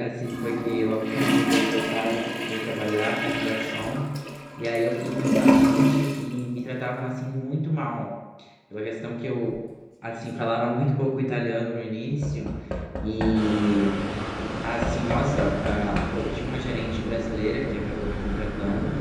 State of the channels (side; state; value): both; identical; correlation 1.00